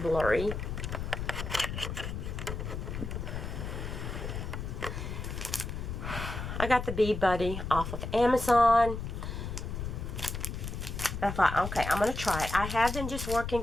blurry. I got the Bead Buddy off of Amazon. I thought, okay, I'm going to try it. I have been just working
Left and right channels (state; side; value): noise; left; rumble, 5 dB below the sound